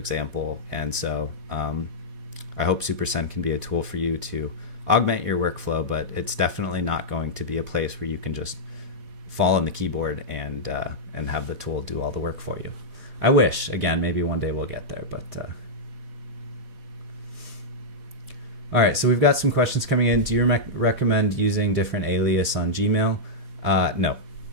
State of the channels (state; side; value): late; left; 3.8 ms